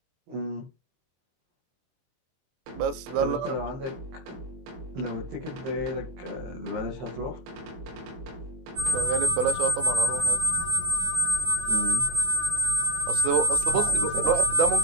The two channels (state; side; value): late; left; 24 ms